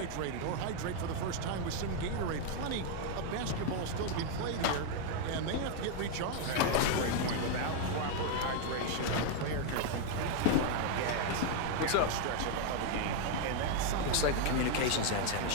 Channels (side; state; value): both; different; correlation 0.00